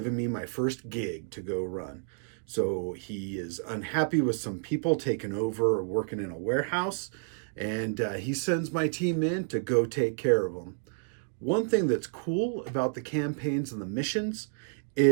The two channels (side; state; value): left; silent; digital silence